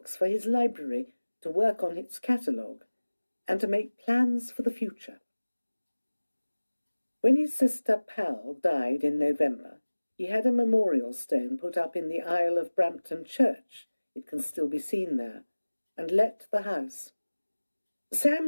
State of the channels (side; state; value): both; inverted; correlation -1.00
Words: for his library, to work on its catalogue, and to make plans for the future. When his sister Pal died in November, he had a memorial stone put up in the aisle of Brampton Church, it can still be seen there, and let the house.